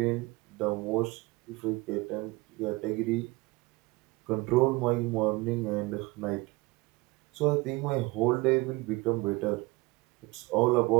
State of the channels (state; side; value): quieter; left; 23.5 dB